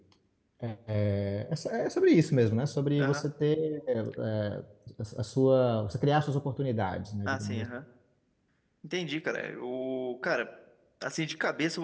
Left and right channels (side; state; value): both; identical; correlation 1.00